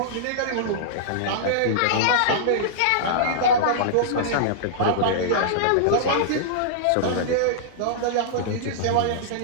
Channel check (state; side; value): different; both; correlation -0.02